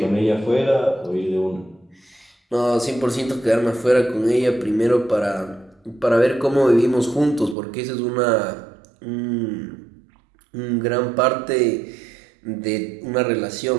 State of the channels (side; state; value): left; drops out; at 7.6 s